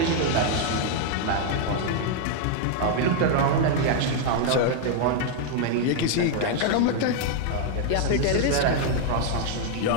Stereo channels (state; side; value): different; both; correlation 0.00